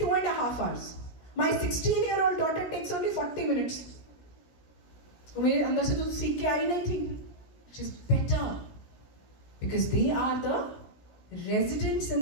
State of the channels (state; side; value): late; right; 17 ms